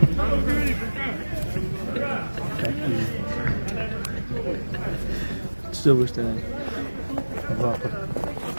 Size bu işte yani. Bravo.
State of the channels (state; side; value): inverted; both; correlation -1.00